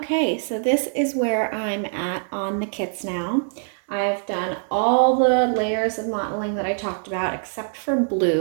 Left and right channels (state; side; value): silent; left; 63 dB below the other